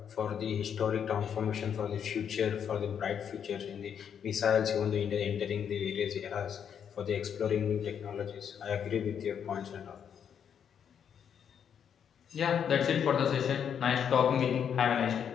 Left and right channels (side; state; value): right; quieter; 8.1 dB